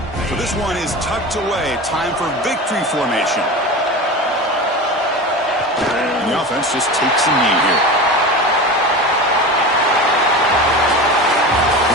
So this one is tucked away. Time for victory formation. And the offense just takes a knee here.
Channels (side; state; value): both; normal; correlation 0.29